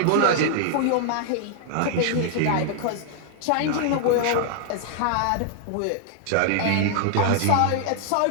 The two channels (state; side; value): different; both; correlation -0.01